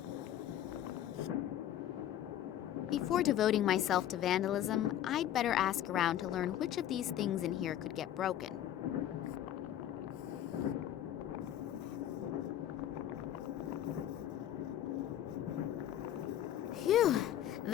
Before devoting myself to vandalism, I'd better ask around to learn which of these things in here could get broken. Phew,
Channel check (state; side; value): quieter; right; 11.5 dB